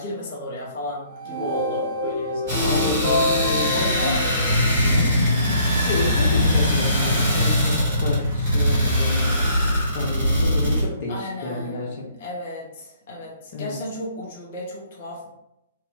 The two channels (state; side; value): inverted; both; correlation -0.63